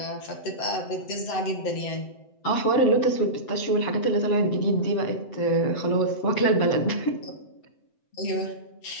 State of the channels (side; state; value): right; late; 7.8 ms